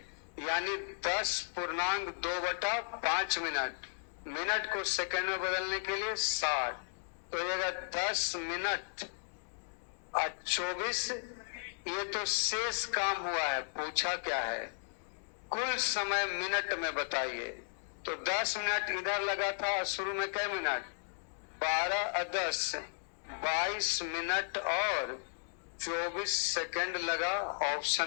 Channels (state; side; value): silent; right; digital silence